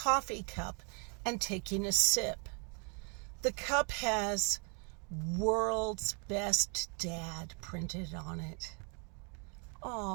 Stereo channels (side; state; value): left; quieter; 35.7 dB